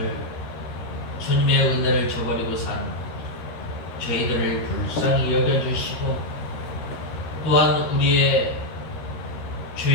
주님의 은혜를 저버리고 산 저희들을 불쌍히 여겨주시고, 또한 우리의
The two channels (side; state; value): right; late; 13 ms